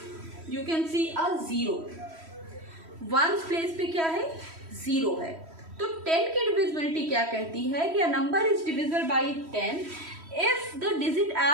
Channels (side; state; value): left; late; 3.1 ms